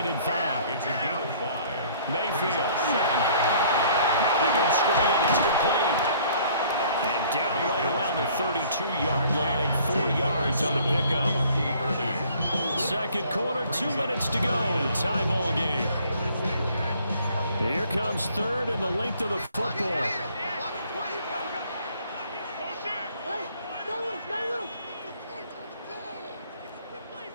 and 5. It's a gain of 5. Mayfield. Now they go straight. It's complete. And down right around the 32-yard line, 4 yards on the pickup. Second quarter, 2 minutes to go. Tie ball game. Here comes third and the length of the football.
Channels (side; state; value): both; inverted; correlation -0.57